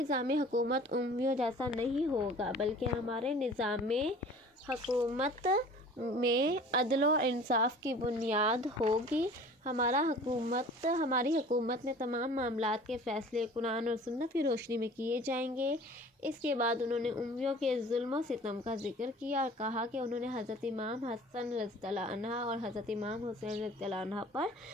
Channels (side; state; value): both; normal; correlation 0.46